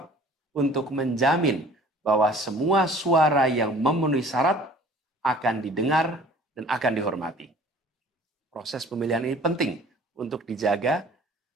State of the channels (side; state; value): both; normal; correlation 0.49